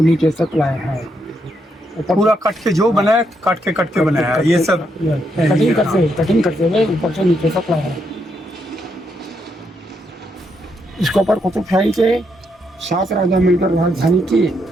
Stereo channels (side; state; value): both; normal; correlation 0.78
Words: नीचे तक लाए हैं। पूरा कट के जो बनाया काट के बनाया ये सब कटिंग करते हुए ऊपर से नीचे तक लाए हैं। इसके ऊपर कुतुबशाही के 7 राजा मिलकर राजधानी की।